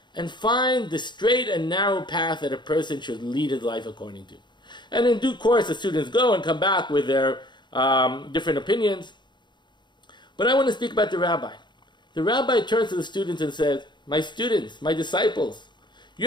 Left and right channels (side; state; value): right; late; 0.22 ms